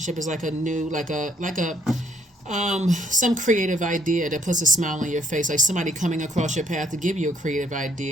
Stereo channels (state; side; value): normal; both; correlation 0.67